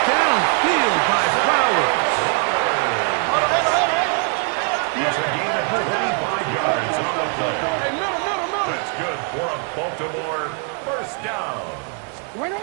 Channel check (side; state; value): left; quieter; 38.2 dB